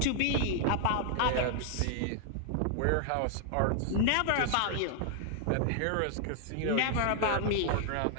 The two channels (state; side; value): different; both; correlation 0.00